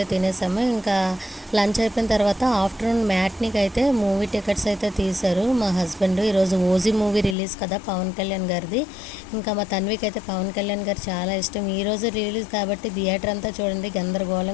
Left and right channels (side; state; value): right; drops out; at 7.4 s